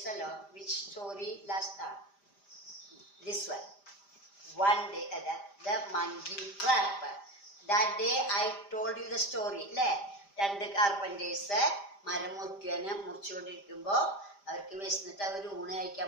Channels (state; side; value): late; right; 5.0 ms